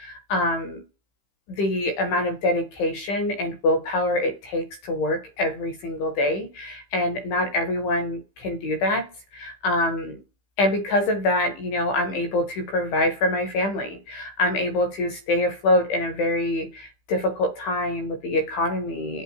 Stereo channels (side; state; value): right; late; 15 ms